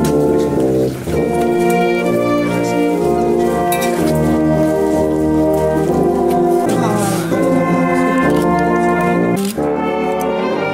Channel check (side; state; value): both; identical; correlation 1.00